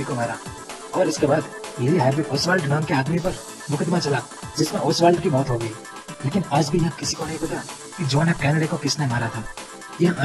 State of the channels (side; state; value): both; identical; correlation 1.00